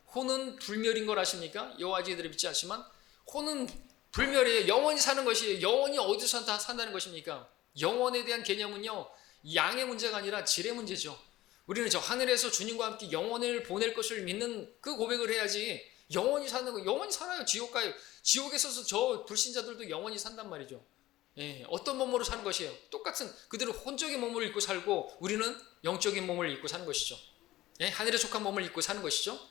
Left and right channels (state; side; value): quieter; right; 16.4 dB